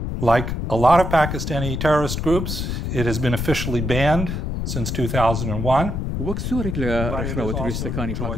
Like a lot of Pakistani terrorist groups, it has been officially banned since 2001. وەک زۆرێک لە ڕێکخراوە توریستەکانی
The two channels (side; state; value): left; noise; rumble, 3 dB below the sound